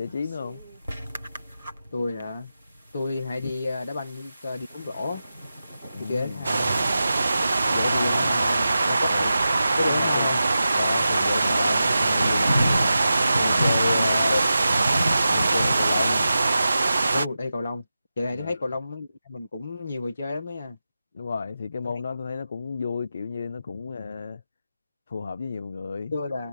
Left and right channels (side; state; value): both; inverted; correlation -0.91